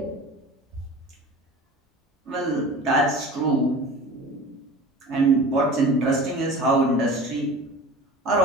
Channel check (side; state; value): both; normal; correlation 0.38